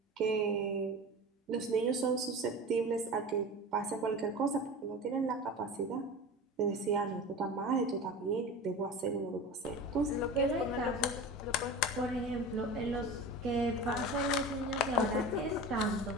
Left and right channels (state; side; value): normal; both; correlation 0.32